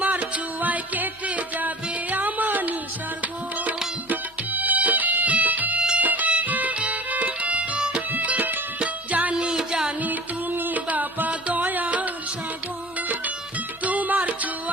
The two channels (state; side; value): normal; both; correlation 0.41